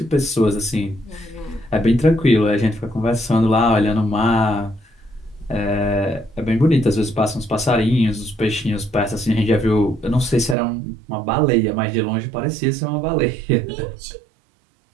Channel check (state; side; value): drops out; left; at 10.6 s